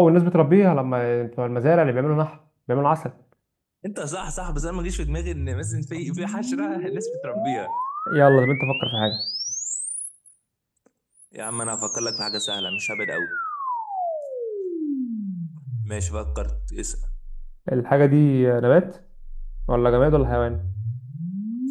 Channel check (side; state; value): both; identical; correlation 1.00